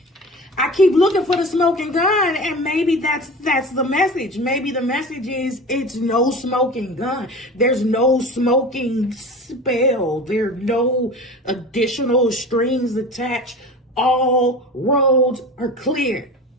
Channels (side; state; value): both; normal; correlation 0.34